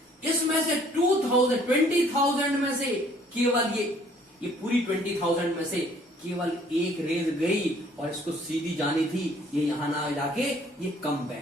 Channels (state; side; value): normal; both; correlation 0.59